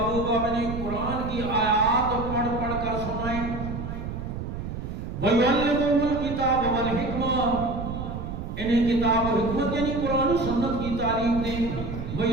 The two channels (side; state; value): right; noise; rumble, 7 dB below the sound